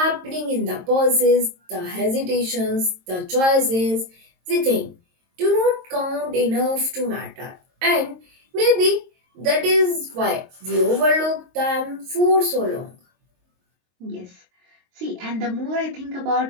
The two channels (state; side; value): late; left; 22 ms